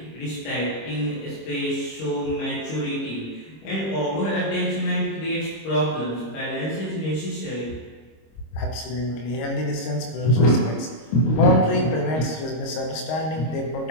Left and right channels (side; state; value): right; late; 26 ms